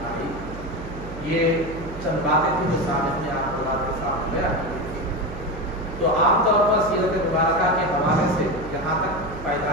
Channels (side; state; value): right; noise; hum, 12 dB below the sound